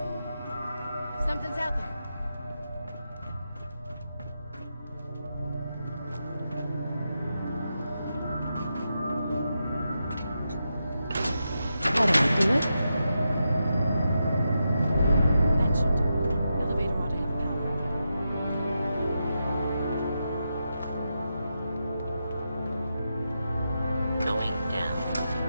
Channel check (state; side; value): inverted; both; correlation -0.87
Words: Something's out there. How do I do it? That should do it. Elevator ought to have power again. Going down.